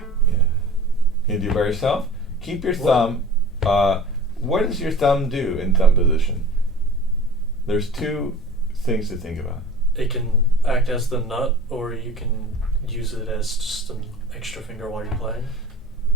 Yeah. You do it by yourself. Keep your What? thumb. What does your thumb do in thumb position? There's two things to think about. It can act as the nut, or you can use it as just an extra finger while you're playing.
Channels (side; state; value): both; normal; correlation 0.41